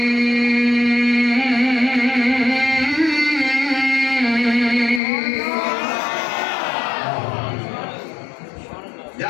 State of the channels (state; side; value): drops out; right; at 5.0 s